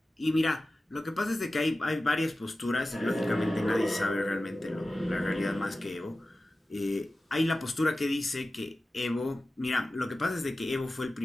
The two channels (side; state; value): both; normal; correlation 0.95